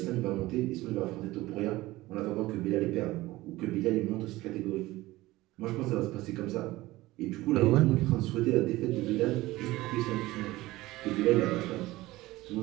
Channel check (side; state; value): left; quieter; 18.4 dB